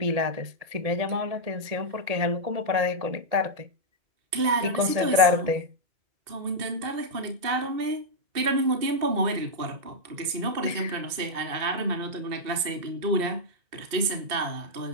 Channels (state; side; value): late; left; 2.7 ms